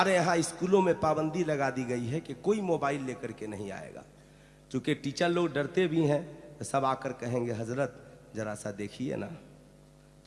यहाँ स्कूलों में पाबंदी लगा दी गई है कि कोई मोबाइल लेकर के नहीं आएगा। चूँकि टीचर लोग डरते भी हैं तो सब आकर कहेंगे हजरत जरा सा देखिए ना,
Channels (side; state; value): both; identical; correlation 1.00